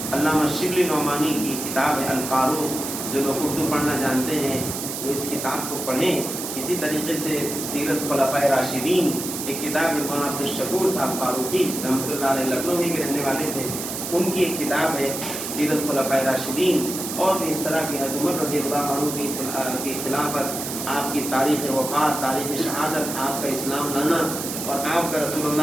علامہ شبلی نعمانی کی کتاب ہے الفاروق، جو لوگ اردو پڑھنا جانتے ہیں وہ اس کتاب کو پڑھیں۔ اسی طریقے سے سیرت خلفائے راشدین ایک کتاب ہے، مولانا عبدالشکور صاحب فاروقی رحمۃ اللہ علیہ لکھنؤ ہی کے رہنے والے تھے، ان کی ایک کتاب ہے سیرت خلفائے راشدین، اور بھی اس طرح کی حضرت عمر رضی اللہ عنہ کی خلافت، آپ کی تاریخ وفات، تاریخ شہادت، آپ کا اسلام لانا اور آپ کا رسول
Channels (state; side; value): noise; right; hiss, 6 dB below the sound